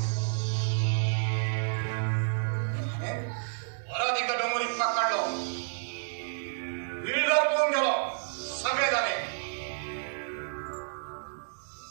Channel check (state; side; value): silent; left; digital silence